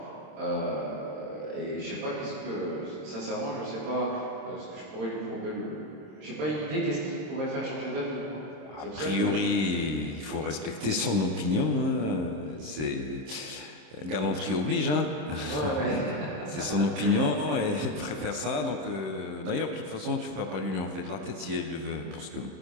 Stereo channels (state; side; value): late; left; 26 ms